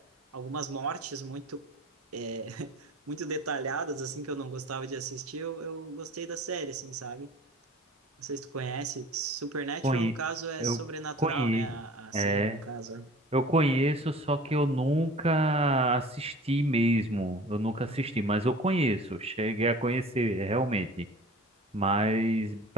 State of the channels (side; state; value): both; normal; correlation 0.44